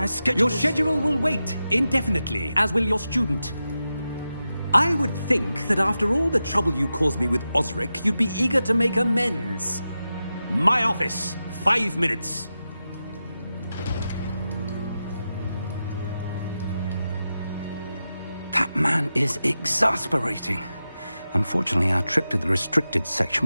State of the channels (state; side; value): inverted; both; correlation -0.91